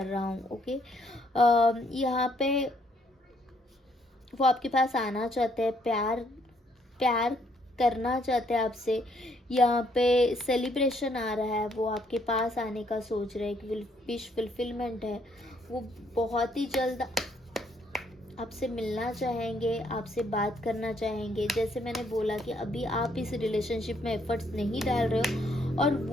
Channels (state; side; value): normal; both; correlation 0.69